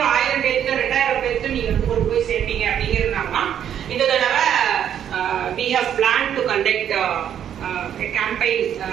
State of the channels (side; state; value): left; quieter; 9.5 dB